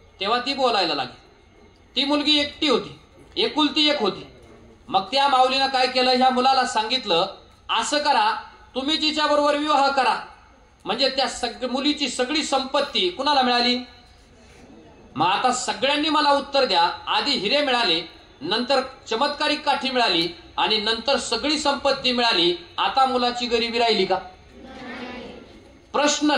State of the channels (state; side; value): identical; both; correlation 1.00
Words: तेव्हा ती बोलायला लागेल. ती मुलगी एकटी होती, एकुलती एक होती. मग त्या माऊलीनं काय केलं? ह्या मुलाला सांगितलं, असं करा, तुम्ही तिच्या बरोबर विवाह करा, म्हणजे त्या मुलीची सगळी संपत्ती कुणाला मिळाली? मग आता सगळ्यांनी मला उत्तर द्या, आधी हिरे मिळाले, नंतर चमत्कारिक काठी मिळाली आणि नंतर सगळी संपत्ती मिळाली, आता मुलाची गरिबी राहिली का? प्रश्न